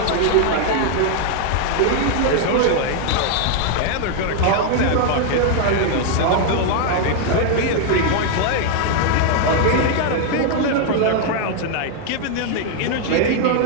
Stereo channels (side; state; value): both; different; correlation 0.00